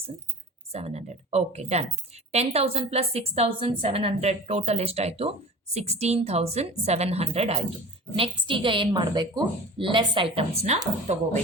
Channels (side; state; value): both; normal; correlation 0.38